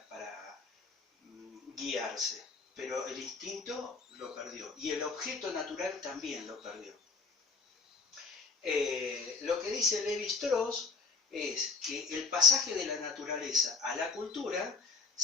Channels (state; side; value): quieter; right; 4.6 dB